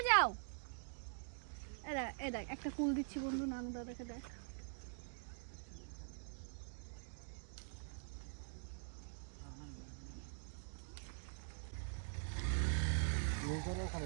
যাও। এ দেখ একটা কুল দিচ্ছি বন্ধু, নানু দা দেখে দেখ। ওখানে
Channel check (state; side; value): silent; left; digital silence